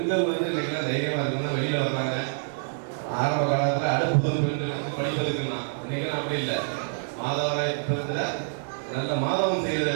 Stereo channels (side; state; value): left; silent; digital silence